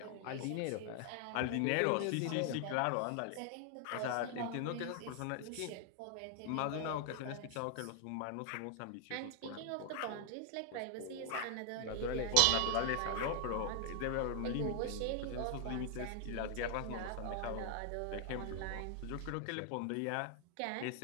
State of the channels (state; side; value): different; both; correlation 0.00